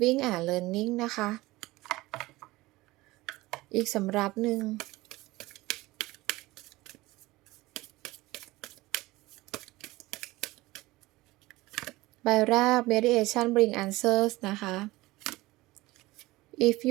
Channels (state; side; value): quieter; left; 19.7 dB